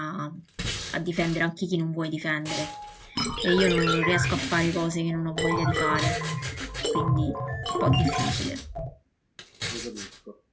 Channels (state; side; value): identical; both; correlation 1.00